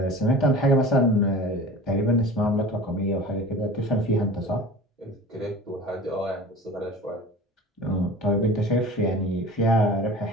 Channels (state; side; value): normal; both; correlation 0.38